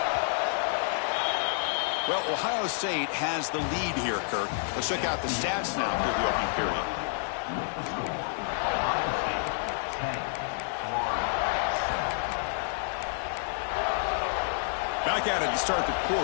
Well, Ohio State has the lead here, Kirk. Let's check out the stats now for the opening period. Back at it to start the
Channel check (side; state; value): right; silent; digital silence